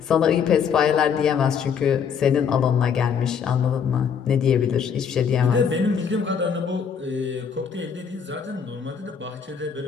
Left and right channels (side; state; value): right; quieter; 7.0 dB